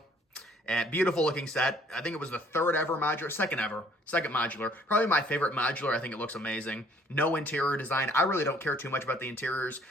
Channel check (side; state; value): both; normal; correlation 0.60